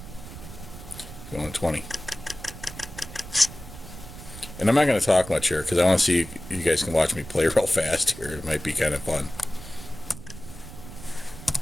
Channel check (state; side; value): noise; right; rumble, 14 dB below the sound